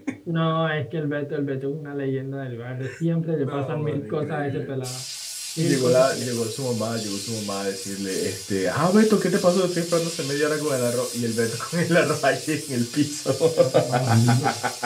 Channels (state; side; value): identical; both; correlation 1.00